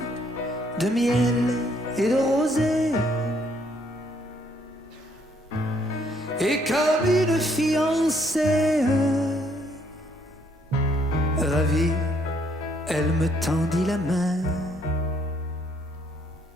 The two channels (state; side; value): normal; both; correlation 0.68